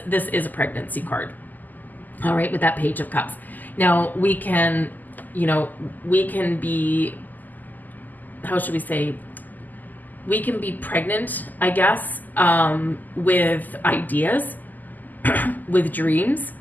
this is a pregnancy card, all right, with that Page of Cups. Now, we can be, how should we say, we can be pregnant, I guess, with ideas, with dreams,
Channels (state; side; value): late; right; 0.084 ms